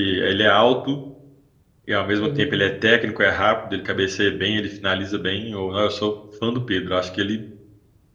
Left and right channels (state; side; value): identical; both; correlation 1.00